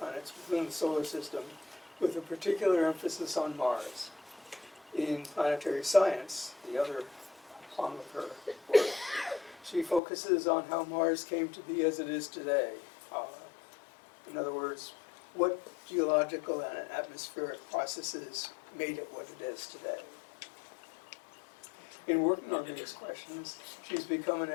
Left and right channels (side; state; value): right; drops out; at 10.0 s